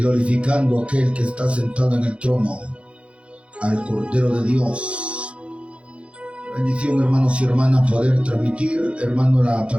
a aquel que está sentado en el trono, al Cordero de Dios. Bendición, hermanos y hermanas, poder transmitir, hermano, la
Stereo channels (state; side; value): late; left; 0.061 ms